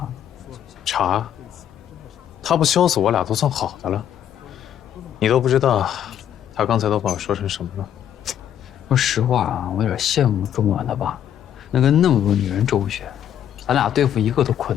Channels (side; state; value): right; quieter; 10.1 dB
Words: 查。他不削死我俩都算好的了。你都不知道，他刚才都把我说成什么了。说实话啊，我有点羡慕钟婉的爸，能跟那么多女人周旋，咱俩对付一个都困